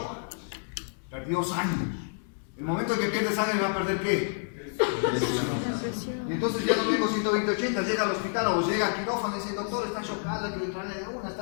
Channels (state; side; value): silent; right; digital silence